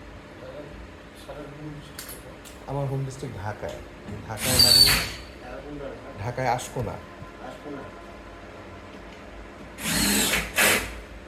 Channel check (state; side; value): identical; both; correlation 1.00